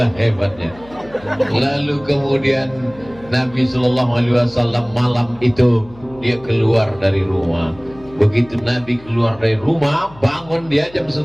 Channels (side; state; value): left; noise; hum, 22 dB below the sound